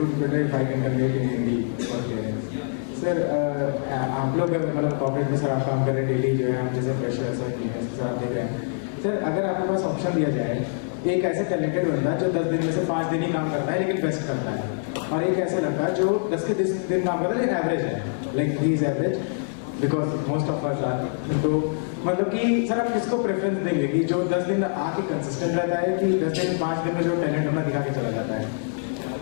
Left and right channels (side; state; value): right; silent; 56 dB below the other